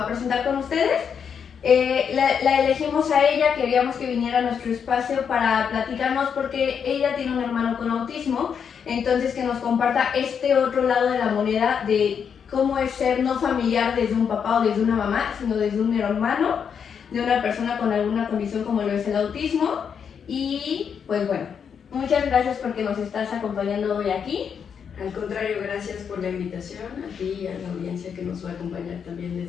a presentar con ustedes. La elegimos a ella, queríamos que viniera a nuestro espacio para platicarnos porque ella tiene un hermano con autismo, entonces que nos comparta este otro lado de la moneda de cómo es ser no familiar desde un papá o desde una mamá, sino desde un hermano, de una persona con alguna condición como lo es el autismo. Y pues bueno, muchas gracias porque nos estás acompañando hoy aquí. Al contrario, gracias por la invitación a ti y a la audiencia que nos va a acompañar también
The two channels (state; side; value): quieter; right; 7.2 dB